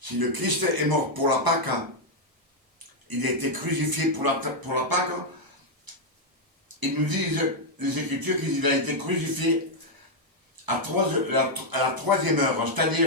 le Christ est mort pour la Pâque, il a été crucifié pour la Pâque, ils nous disent, les Écritures, qu'il a été crucifié à la troisième heure,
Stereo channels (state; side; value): late; left; 1.0 ms